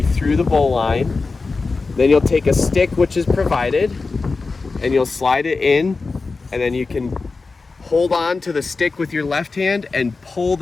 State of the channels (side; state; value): right; quieter; 4.1 dB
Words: the bow line. Then you'll take a stick, which is provided, and you'll slide it in, and then you can hold on to the stick with your left hand and pull